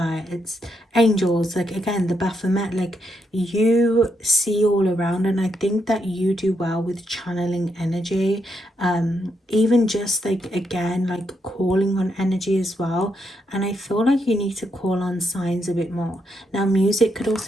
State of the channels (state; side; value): normal; both; correlation 0.79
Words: angels, like again, the Baphomet, like you see all around. And I think that you do well with channeling energy, even just like, again, like calling on energy as well. And I feel like you need to call on signs a bit more. Now, music could